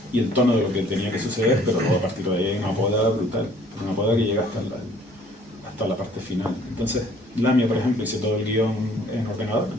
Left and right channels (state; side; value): normal; both; correlation 0.57